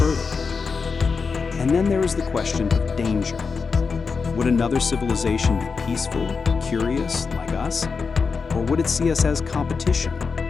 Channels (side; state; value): right; quieter; 5.1 dB